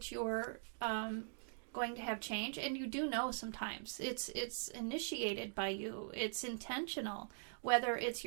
you're going to have change, and you do know sometimes, it's initiated by you. It's intentional. Whether it's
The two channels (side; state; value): left; silent; digital silence